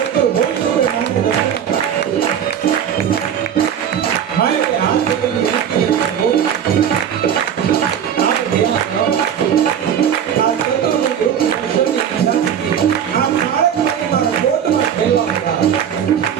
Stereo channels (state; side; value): quieter; left; 8.8 dB